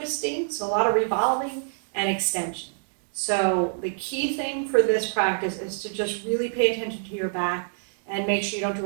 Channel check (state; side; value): silent; left; digital silence